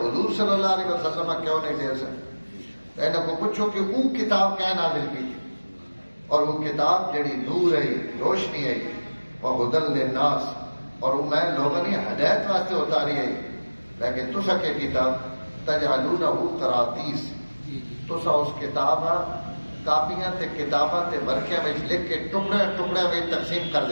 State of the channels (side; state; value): both; inverted; correlation -1.00